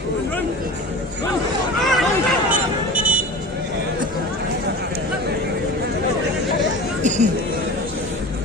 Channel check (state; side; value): normal; both; correlation 0.35